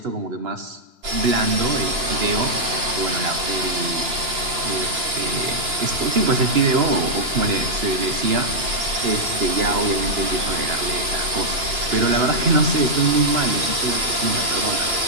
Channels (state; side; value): late; left; 2.9 ms